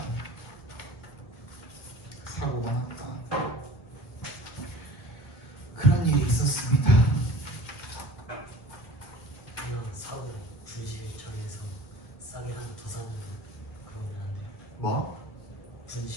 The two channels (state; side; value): late; right; 1.7 ms